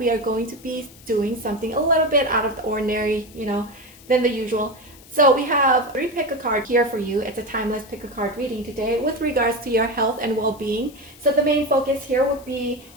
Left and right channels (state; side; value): noise; left; hiss, 23 dB below the sound